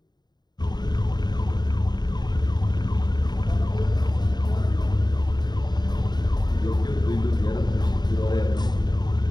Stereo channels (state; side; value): late; right; 0.20 ms